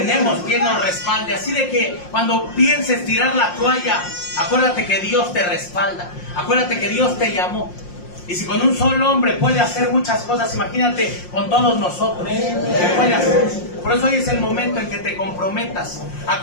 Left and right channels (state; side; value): late; right; 5.6 ms